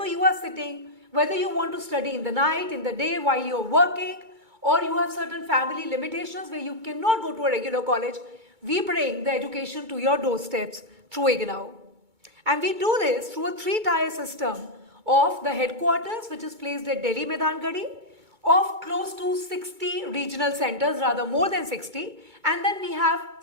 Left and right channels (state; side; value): late; left; 2.2 ms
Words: you are sitting, whether you want to study in the night, in the day, while you're working, or you have certain family limitations where you cannot go to a regular college, we bring the education to your doorsteps through IGNOU. And we do this through a 3-tier system of the headquarters, which is placed at Delhi Maidangadi, of close to 60 regional centers, rather more than 60. And then we have